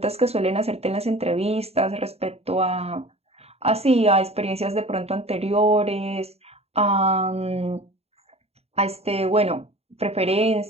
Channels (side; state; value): left; late; 0.30 ms